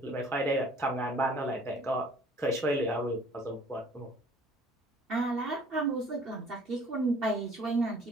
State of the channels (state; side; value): normal; both; correlation 0.54